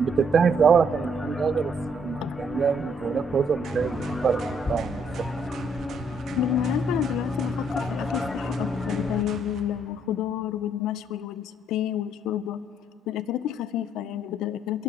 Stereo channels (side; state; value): both; normal; correlation 0.68